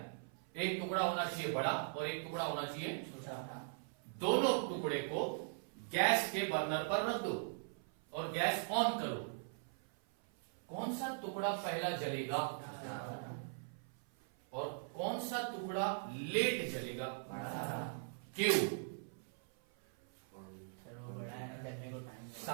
एक टुकड़ा होना चाहिए बड़ा और एक टुकड़ा होना चाहिए छोटा। दोनों टुकड़े को गैस के बर्नर पर रख दो और गैस ऑन करो। कौन सा टुकड़ा पहला जलेगा और कौन सा टुकड़ा लेट जलेगा, क्यों,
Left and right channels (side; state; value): left; silent; 51 dB below the other